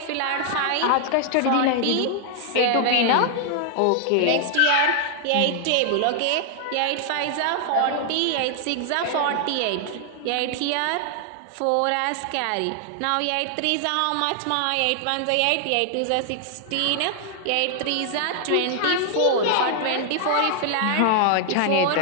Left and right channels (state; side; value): different; both; correlation 0.00